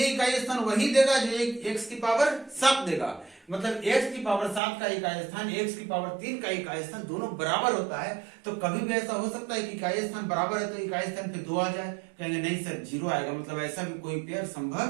इकाई स्थान वही देगा जो x की पावर 7 देगा। मतलब x की पावर 7 का इकाई स्थान x की पावर 3 का इकाई स्थान दोनों बराबर होता है। तो कभी भी ऐसा हो सकता है कि इकाई स्थान बराबर है तो इकाई स्थान पे 2 आ जाए, कहेंगे नहीं सर 0 आएगा, मतलब ऐसा भी कोई पेयर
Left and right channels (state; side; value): drops out; left; at 4.6 s